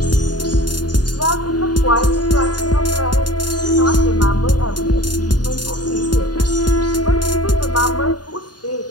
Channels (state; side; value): late; right; 0.70 ms